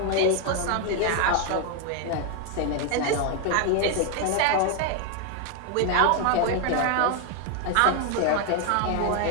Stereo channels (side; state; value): both; different; correlation 0.01